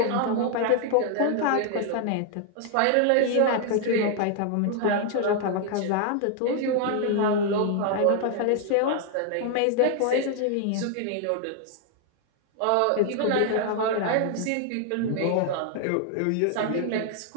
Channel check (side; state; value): both; different; correlation 0.00